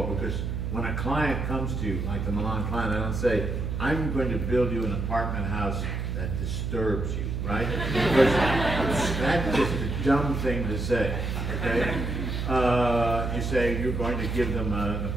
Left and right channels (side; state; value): right; noise; hum, 2 dB below the sound